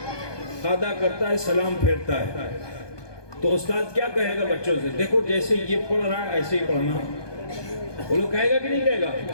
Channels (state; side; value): late; right; 1.2 ms